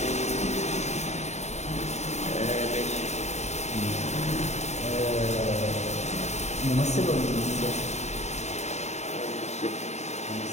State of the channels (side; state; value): right; late; 0.32 ms